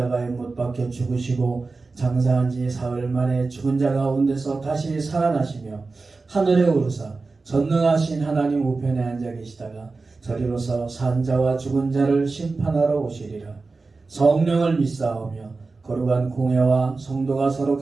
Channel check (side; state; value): left; quieter; 3.9 dB